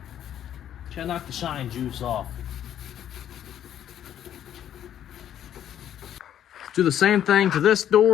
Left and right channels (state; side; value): quieter; right; 10.5 dB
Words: Try to knock the shine juice off. Do the same thing to this